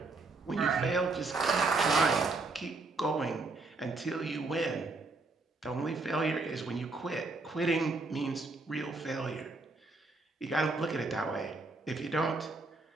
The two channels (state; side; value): quieter; left; 3.5 dB